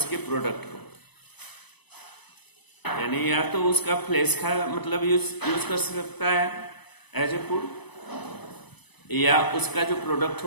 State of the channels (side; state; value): right; late; 0.99 ms